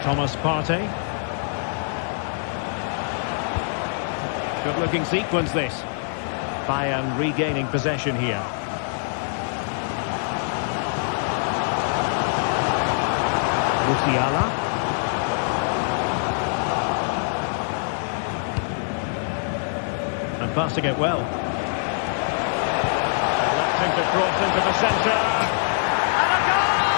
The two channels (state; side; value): silent; right; 63 dB below the other